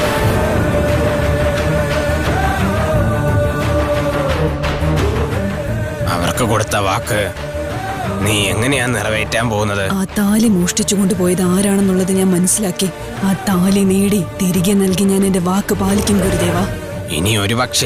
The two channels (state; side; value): identical; both; correlation 1.00